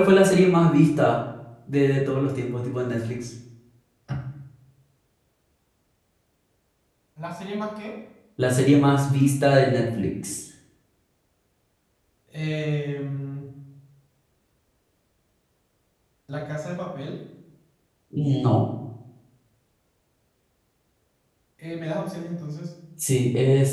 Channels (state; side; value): identical; both; correlation 1.00